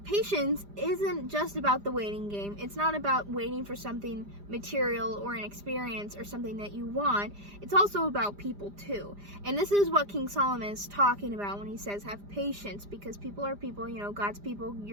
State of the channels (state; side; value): late; left; 5.0 ms